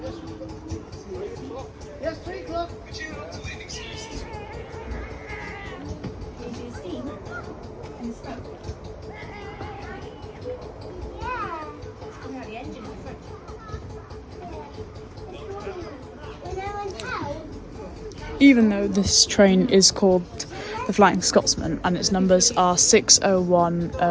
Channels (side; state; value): both; identical; correlation 1.00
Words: Yes, 3 o'clock. Can you see the steam and the smoke? Yeah. Coming out the engine in the front. When I went out, Even though this train is called the Flying Scotsman and its numbers are 6010,